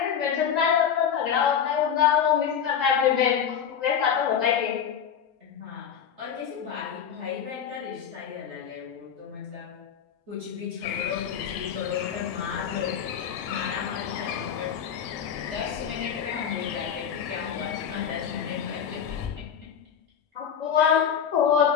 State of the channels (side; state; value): right; quieter; 8.1 dB